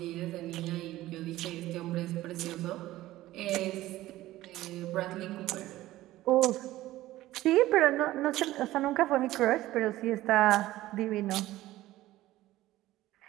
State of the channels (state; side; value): quieter; left; 16.0 dB